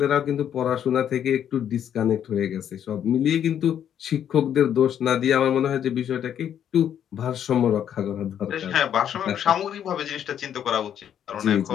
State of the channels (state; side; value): quieter; right; 9.5 dB